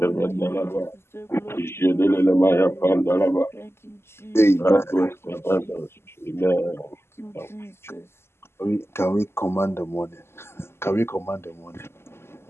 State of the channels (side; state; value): right; late; 0.12 ms